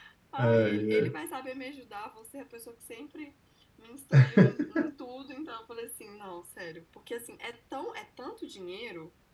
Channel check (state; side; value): identical; both; correlation 1.00